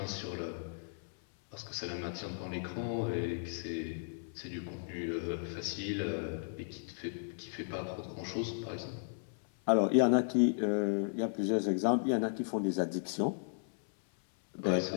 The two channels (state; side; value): silent; right; 54 dB below the other